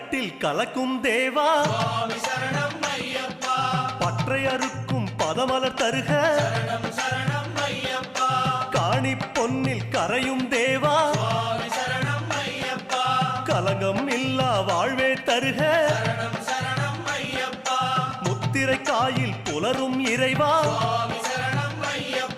கலக்கும் தேவா சுவாமி சரணம் ஐயப்பா பற்றை அறுக்கும் பதமலர் தருக சரணம் சரணம் ஐயப்பா காணி பொன்னில் கரையும் தேவா சுவாமி சரணம் ஐயப்பா கலங்கம் இல்லா வாழ்வே தருக சரணம் சரணம் ஐயப்பா முத்திரை காயில் புலரும் இறைவா சுவாமி சரணம்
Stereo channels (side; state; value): both; identical; correlation 1.00